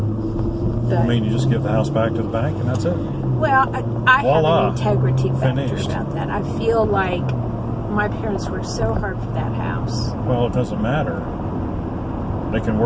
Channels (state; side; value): identical; both; correlation 1.00